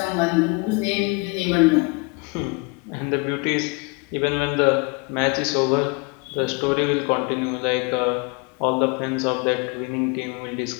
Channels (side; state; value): right; quieter; 30.2 dB